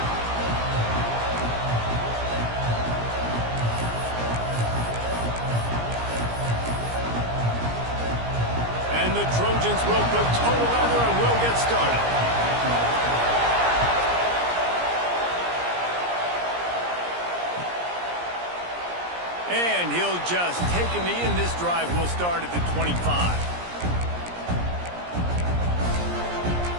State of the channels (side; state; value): left; late; 17 ms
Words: The Trojans will put total leather and we'll get started. And he'll just take a knee, and this drive will start at the 25.